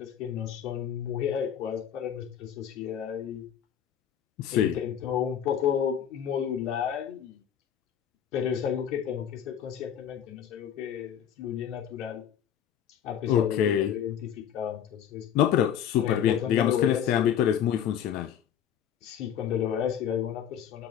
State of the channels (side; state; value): right; quieter; 9.3 dB